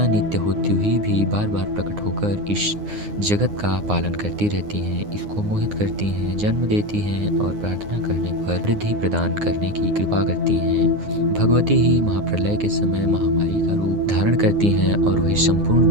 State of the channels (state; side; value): late; left; 9.7 ms